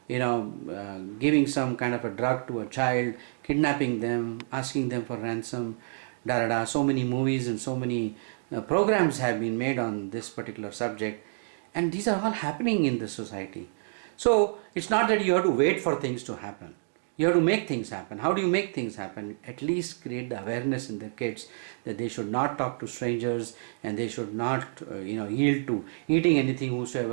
giving some kind of a drug to a child, kidnapping them, asking them for ransom, so many movies and so many programs have been made on this particular subject, and these are all happening in the society. So it's not that you have to wait for things to happen. You have to make things happen. How do you make things happen? At least create the awareness in the kids that they should not talk to strangers, and they should not yield to eating anything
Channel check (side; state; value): left; silent; digital silence